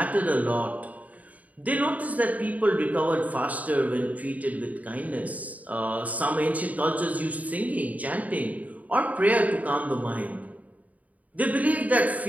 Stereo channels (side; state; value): left; late; 0.072 ms